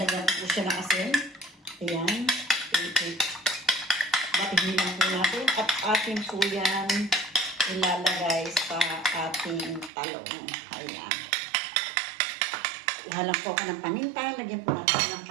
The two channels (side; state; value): left; drops out; at 9.9 s